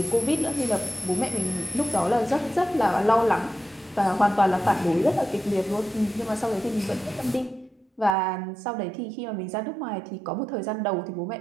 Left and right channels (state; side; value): drops out; left; at 8.2 s